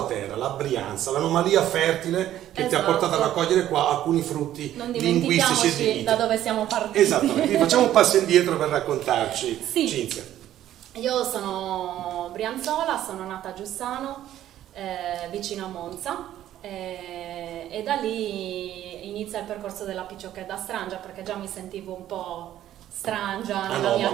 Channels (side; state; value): left; quieter; 12.3 dB